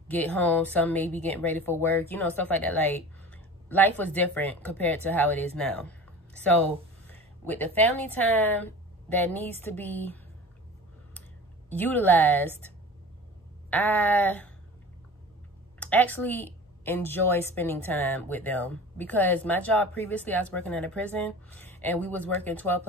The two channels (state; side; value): normal; both; correlation 0.38